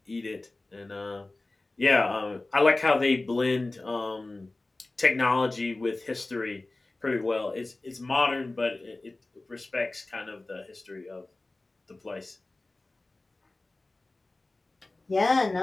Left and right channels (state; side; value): quieter; right; 3.0 dB